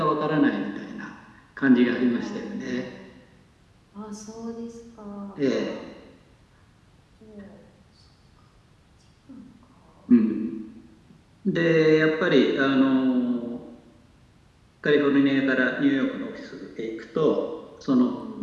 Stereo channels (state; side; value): identical; both; correlation 1.00